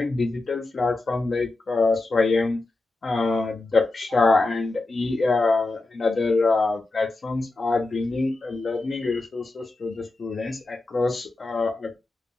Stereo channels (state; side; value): quieter; right; 3.1 dB